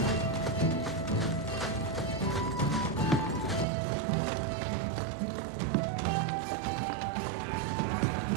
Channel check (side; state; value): left; drops out; at 3.7 s